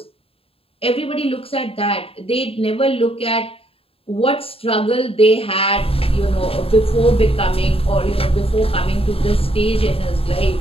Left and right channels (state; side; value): late; right; 0.27 ms